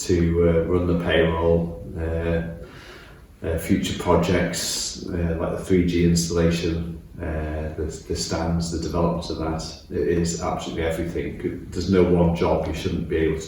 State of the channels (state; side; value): identical; both; correlation 1.00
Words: to run the payroll, future projects like the 3G installation, the stands, the development of that. It is absolutely everything. There's no one job you shouldn't be able